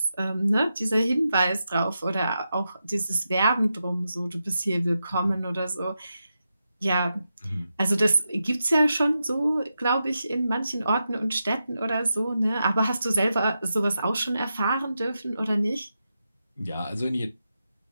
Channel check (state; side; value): inverted; both; correlation -0.88